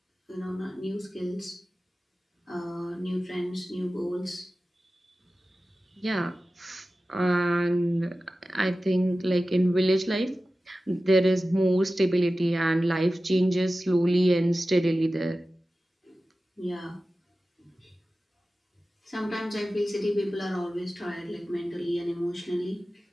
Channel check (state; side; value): normal; both; correlation 0.95